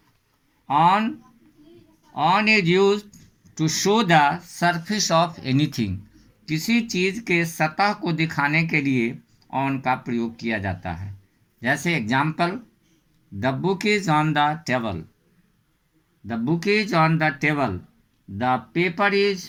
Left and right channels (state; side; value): identical; both; correlation 1.00